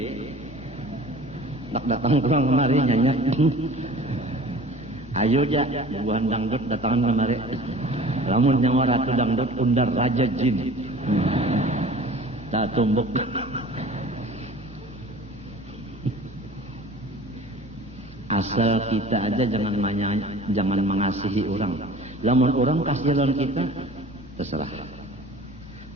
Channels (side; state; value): both; normal; correlation 0.43